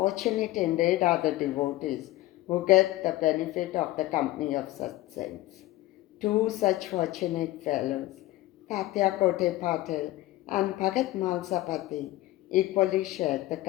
indeed are the devotees who get the benefit of the company of such saints. Two such fortunate fellows, Tatya Kote Patil and Bhagat Malsapati, equally shared the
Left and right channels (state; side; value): quieter; right; 16.9 dB